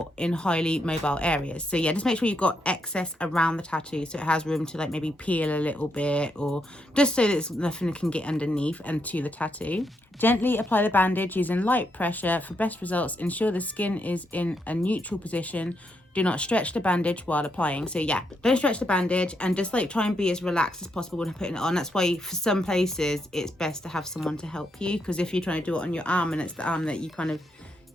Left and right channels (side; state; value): both; normal; correlation 0.79